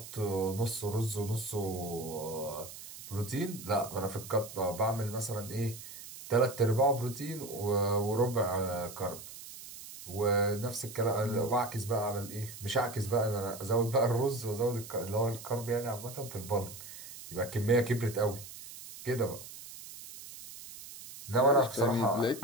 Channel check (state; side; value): noise; right; hiss, 14 dB below the sound